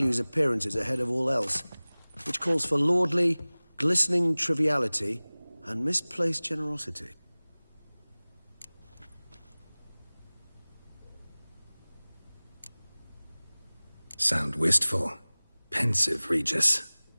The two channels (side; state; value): both; inverted; correlation -1.00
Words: appearances ahead of all else. Which calls for lordly, glistening triviality and misplaced generosity. Sound wistful. Pensive, Regis.